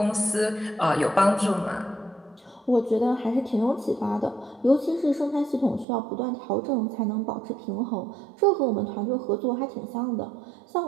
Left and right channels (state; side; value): drops out; left; at 5.9 s